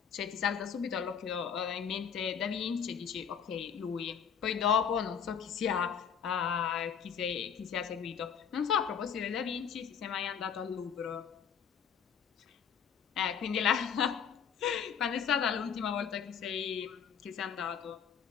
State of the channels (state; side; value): quieter; right; 7.5 dB